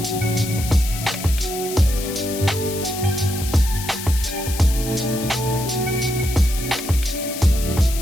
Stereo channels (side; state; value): left; noise; hiss, 9 dB below the sound